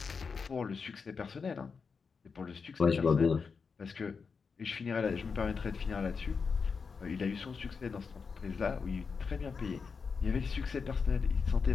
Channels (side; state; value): right; quieter; 5.3 dB